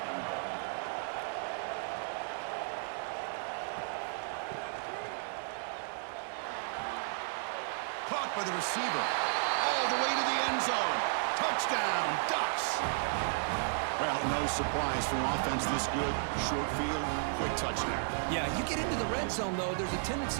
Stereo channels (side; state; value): left; silent; digital silence